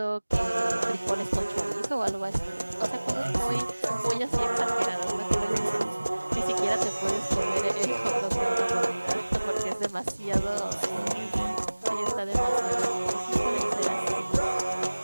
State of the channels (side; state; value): both; inverted; correlation -1.00